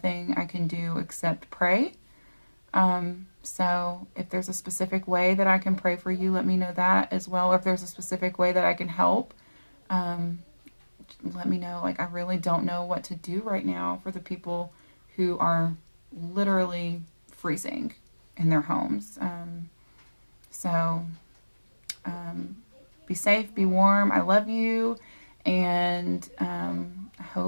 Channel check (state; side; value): inverted; both; correlation -1.00